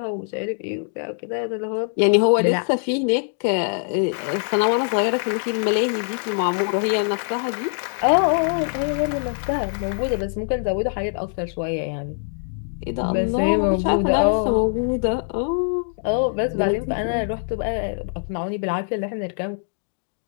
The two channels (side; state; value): right; silent; digital silence